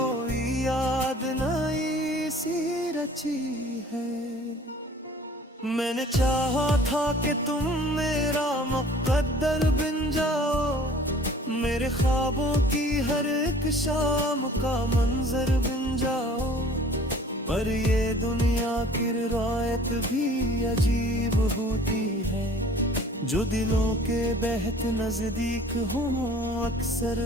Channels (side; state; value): both; normal; correlation 0.50